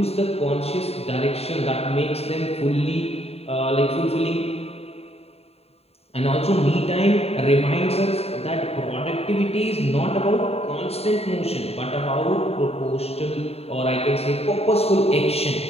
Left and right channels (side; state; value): right; late; 0.29 ms